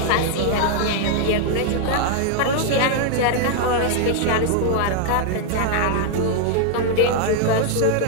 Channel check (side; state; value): both; different; correlation 0.00